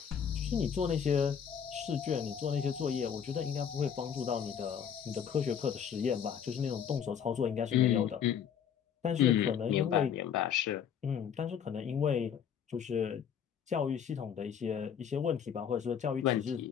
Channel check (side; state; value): right; quieter; 8.1 dB